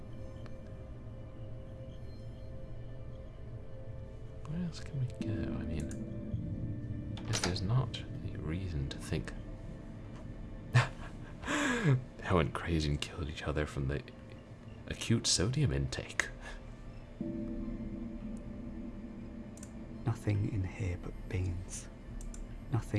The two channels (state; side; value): identical; both; correlation 1.00